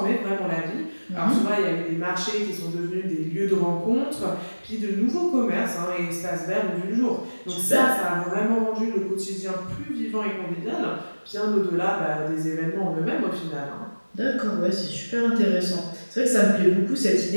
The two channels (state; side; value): inverted; both; correlation -1.00